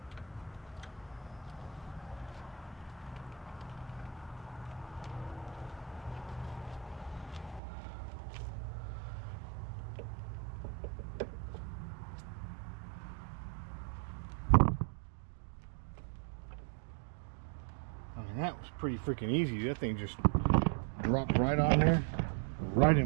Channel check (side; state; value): left; drops out; at 7.6 s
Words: pretty freaking easy. That thing just dropped right on there, right